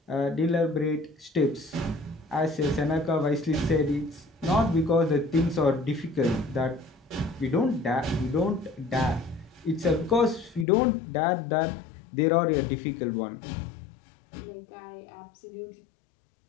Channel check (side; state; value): right; drops out; at 10.7 s